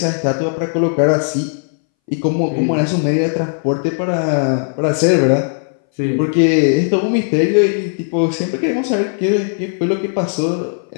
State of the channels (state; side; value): silent; right; 64 dB below the other